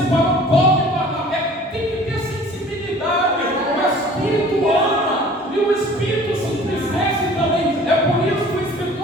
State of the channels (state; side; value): normal; both; correlation 0.48